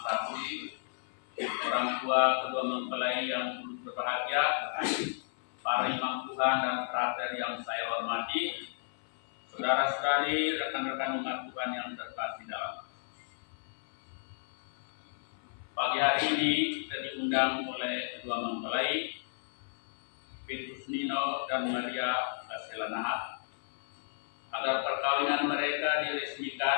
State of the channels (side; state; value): right; silent; 56 dB below the other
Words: Sakti, orang tua kedua mempelai yang turut berbahagia, para imam Tuhan dan frater yang saya hormati, saudara-saudari, rekan-rekan umat Tuhan yang terkasih dalam. Pagi hari ini kita diundang oleh kedua mempelai, Petrus Nino dan Maria Kasela Nahat, agar perkawinan mereka